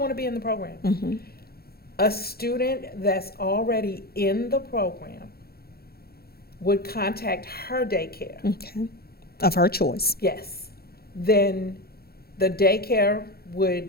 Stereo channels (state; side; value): late; right; 0.45 ms